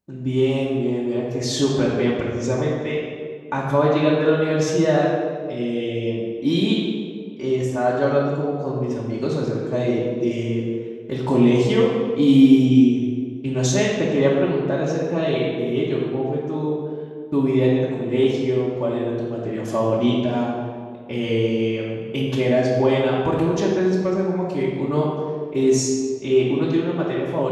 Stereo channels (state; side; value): identical; both; correlation 1.00